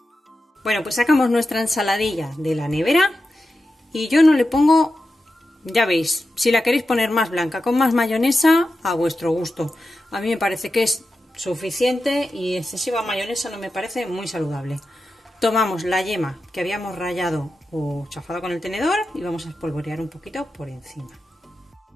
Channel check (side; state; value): both; normal; correlation 0.91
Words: Bueno, pues sacamos nuestra ensaladilla de la nevera y yo no le pongo, ya veis, si la queréis poner más blanca, con más mayonesa, a vuestro gusto. A mí me parece que es suficiente y excesiva mayonesa no me parece muy saludable. Tomamos la yema que habíamos rallado o chafado con el tenedor y vamos a espolvorear un poquito por encima.